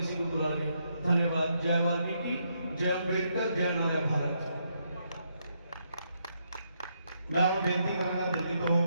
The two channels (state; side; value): inverted; both; correlation -0.77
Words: को बुला के। धन्यवाद। जय वाल्मीकि, जय अम्बेडकर, जय नारा भारत। मैं और बेनती करूंगा दिल्ली तो